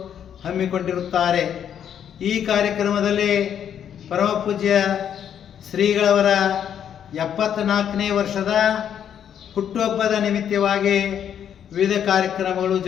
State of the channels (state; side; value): quieter; right; 9.1 dB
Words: ಹಮ್ಮಿಕೊಂಡಿರುತ್ತಾರೆ. ಈ ಕಾರ್ಯಕ್ರಮದಲ್ಲಿ ಪರಮಪೂಜ್ಯ ಶ್ರೀಗಳವರ 74ನೇ ವರ್ಷದ ಹುಟ್ಟುಹಬ್ಬದ ನಿಮಿತ್ತವಾಗಿ ವಿವಿಧ ಕಾರ್ಯಕ್ರಮಗಳು